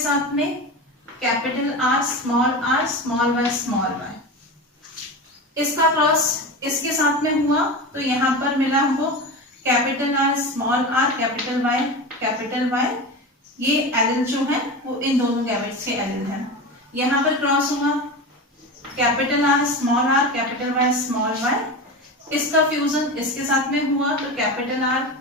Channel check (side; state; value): both; normal; correlation 0.25